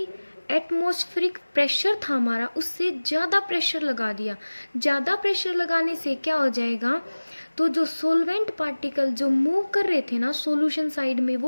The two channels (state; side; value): inverted; both; correlation -1.00